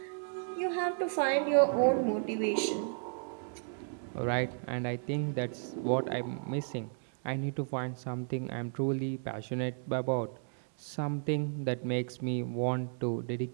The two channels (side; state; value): left; silent; digital silence